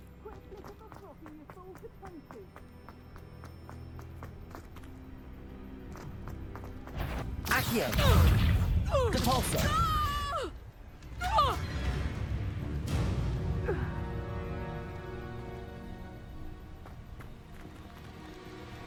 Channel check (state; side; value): identical; both; correlation 1.00